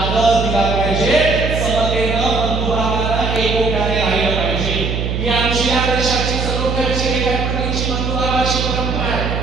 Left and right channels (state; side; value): noise; right; hum, 2 dB below the sound